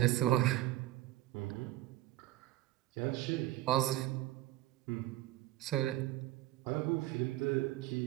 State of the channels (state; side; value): quieter; left; 15.8 dB